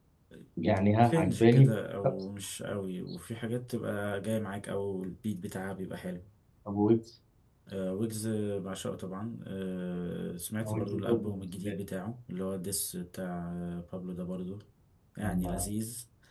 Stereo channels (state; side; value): identical; both; correlation 1.00